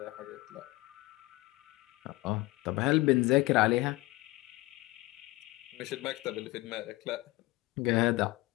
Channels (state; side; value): quieter; right; 20.4 dB